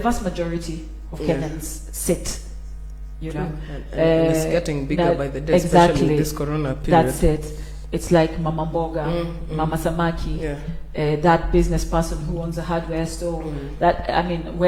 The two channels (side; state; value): both; identical; correlation 1.00